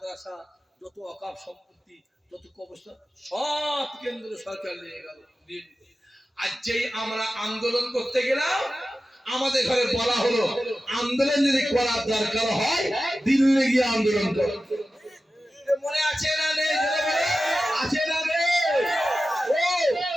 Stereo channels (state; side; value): normal; both; correlation 0.94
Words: যত ওয়াকফ সম্পত্তি, যত কবরস্থান, সব কেন্দ্র সরকার নিয়ে গেল। আর যেই আমরা আন্দোলন করতে গেলাম, আমাদের ঘরে বলা হলো আন্দোলন যদি করার দরকার হয় দিল্লি গিয়ে আন্দোলন করো। মনে আছে না নেই? আছে না নেই? ও